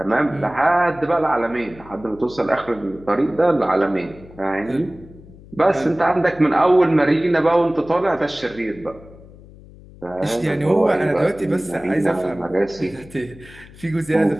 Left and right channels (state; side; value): noise; left; hum, 21 dB below the sound